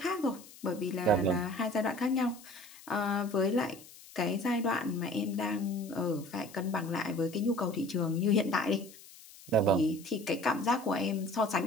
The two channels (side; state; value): left; noise; hiss, 20 dB below the sound